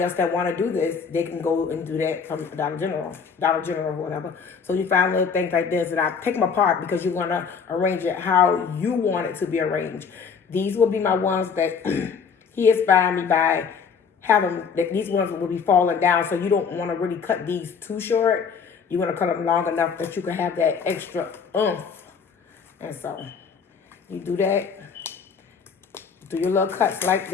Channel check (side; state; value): right; quieter; 6.1 dB